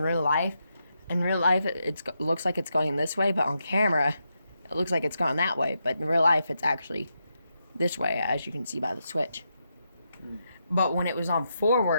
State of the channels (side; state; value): both; inverted; correlation -0.84